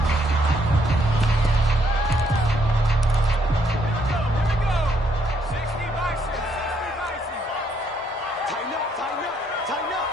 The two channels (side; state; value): both; normal; correlation 0.71